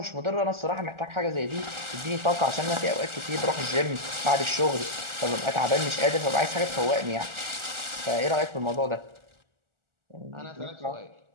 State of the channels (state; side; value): late; left; 1.4 ms